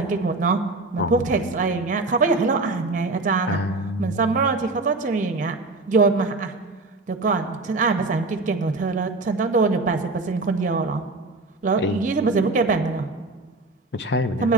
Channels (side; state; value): left; quieter; 3.3 dB